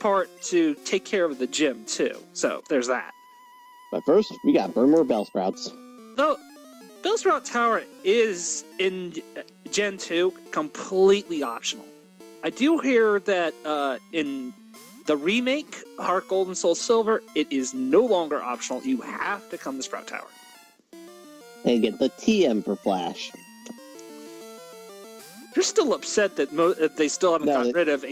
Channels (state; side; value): identical; both; correlation 1.00